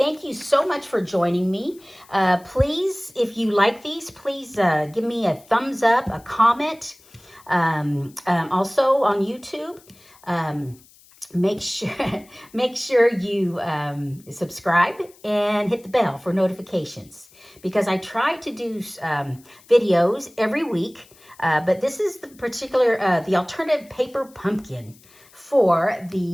you so much for joining me. Please, if you like these, please give me a thumbs up, a comment. Also on YouTube. Make sure you subscribe and hit the bell for notifications, because I try to do videos every week, but this is the particular the alternative paper pumpkin for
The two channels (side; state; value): left; noise; hiss, 27 dB below the sound